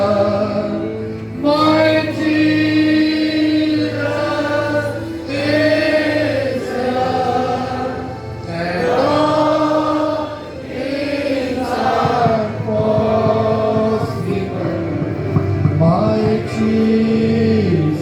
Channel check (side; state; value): both; identical; correlation 1.00